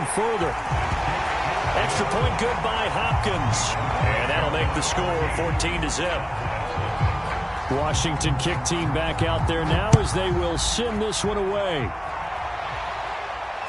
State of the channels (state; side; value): identical; both; correlation 1.00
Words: further. Extra point good by Hopkins. And that'll make the score 14-zip. Washington kick team back out there now as they will send this one away.